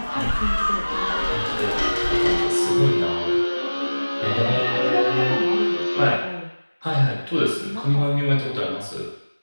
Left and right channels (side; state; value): both; inverted; correlation -1.00